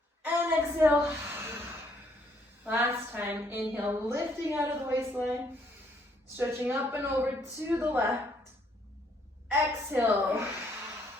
And exhale. Last time, inhale, lifting out of the waistline, stretching up and over to the left. Exhale.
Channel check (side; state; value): both; normal; correlation 0.68